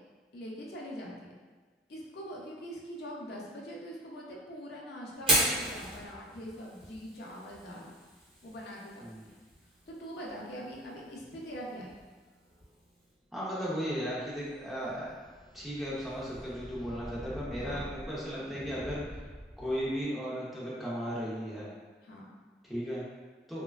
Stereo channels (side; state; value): both; normal; correlation 0.50